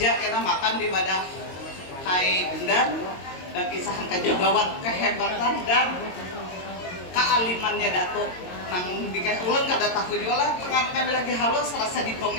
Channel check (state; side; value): late; right; 22 ms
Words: kita makan di wadah Kai Bundan dan kisahan kajagawan kehebatan dan kealimannya Datuk. Nang dikasih ulun kada tahu juga lah, kami lagi halus rasa